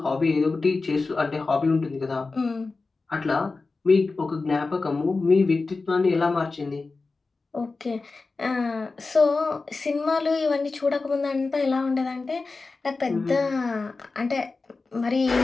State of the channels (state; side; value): quieter; right; 3.9 dB